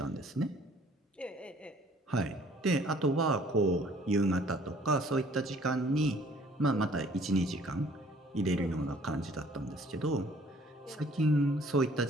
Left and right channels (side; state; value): both; normal; correlation 0.57